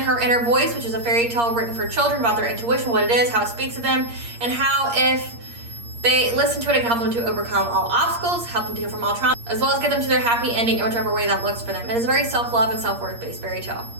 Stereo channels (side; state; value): left; late; 8.5 ms